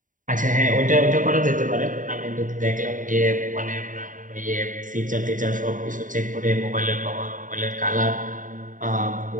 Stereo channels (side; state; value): left; late; 0.38 ms